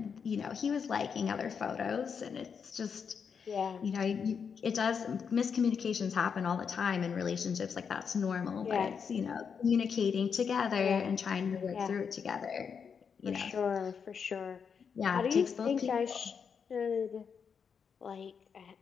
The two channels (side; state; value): right; quieter; 6.5 dB